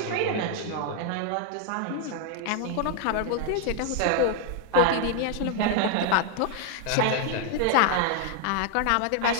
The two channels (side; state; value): both; different; correlation 0.00